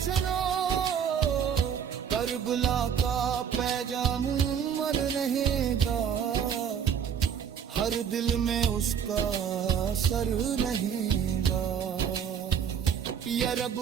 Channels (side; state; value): left; quieter; 7.9 dB